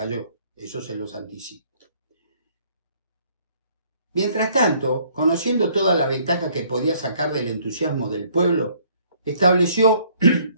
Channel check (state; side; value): inverted; both; correlation -0.62